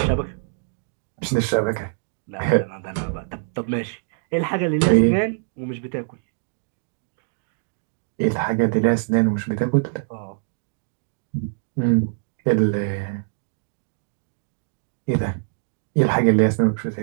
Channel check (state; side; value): silent; left; digital silence